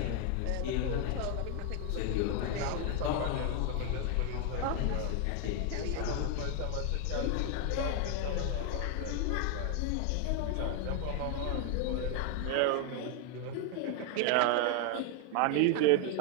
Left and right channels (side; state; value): both; different; correlation 0.00